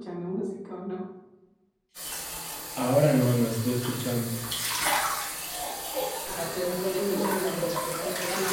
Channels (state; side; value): identical; both; correlation 1.00